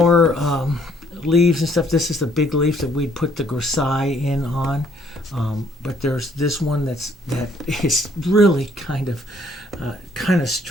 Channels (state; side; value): normal; both; correlation 0.65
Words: leaves and stuff. This is the big leaf that we'd put the grisaille in on. But there's this one that is really kind of